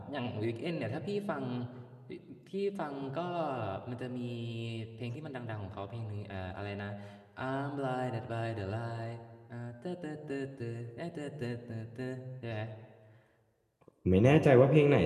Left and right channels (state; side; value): identical; both; correlation 1.00